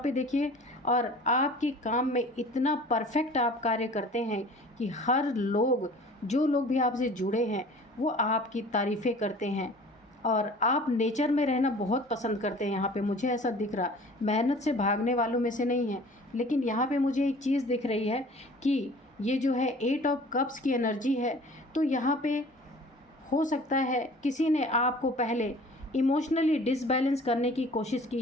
देखिए, और आपके काम में इतना परफेक्ट आप कार्य करते हैं कि हर लोग, जो लोग भी आपसे जुड़े हैं, वो आपकी तारीफ़ें करते हैं। और आप नेचर में रहना बहुत पसंद करते हैं। यहाँ पे मुझे ऐसा दिख रहा, मेहनत से भागने वालों में से नहीं है, लेकिन यहाँ पे मुझे एक चीज़ दिख रही है कि ये जो है 8 ऑफ कप्स की एनर्जी है। तो यहाँ पे हो सकता है किसी ने आपको पहले इमोशनली डिसबैलेंस करने की कोशिश की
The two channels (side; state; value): both; normal; correlation 0.46